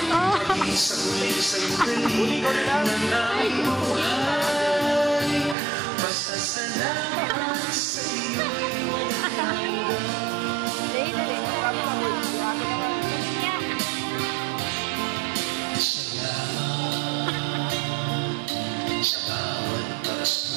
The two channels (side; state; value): left; drops out; at 5.6 s